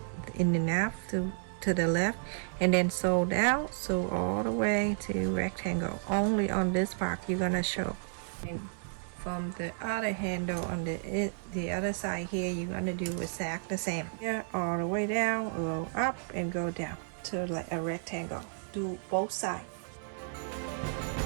in and half to the left, and then sew down, sew all the way to rectangle. Only on this part you're gonna show. And from the other handle on the other side here, you're gonna do exact the same. Here, all the way down, go up, and go down to like a rectangle. Do both sides.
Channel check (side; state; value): left; silent; digital silence